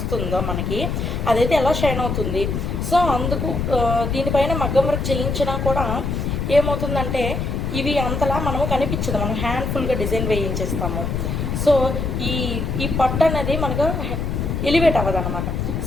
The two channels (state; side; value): noise; left; rumble, 2 dB below the sound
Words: మనకి అదైతే ఎలా షైన్ అవుతుంది. సో అందుకు దీనిపైన మగ్గం వర్క్ చేయించినా కూడా ఏమవుతుందంటే ఇవి అంతలా మనము కనిపించదు, మనం హ్యాండ్ఫుల్గా డిజైన్ వేయించేస్తాము. సో ఈ పట్టు అనేది మనకు ఎలివేట్ అవ్వదు అనమాట.